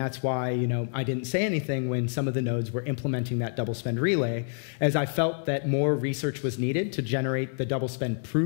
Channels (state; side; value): silent; right; 60 dB below the other